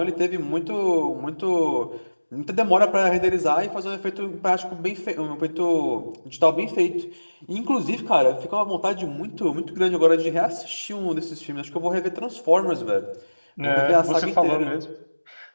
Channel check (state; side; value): inverted; both; correlation -1.00